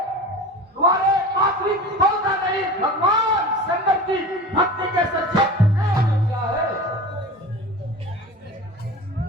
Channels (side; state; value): both; normal; correlation 0.34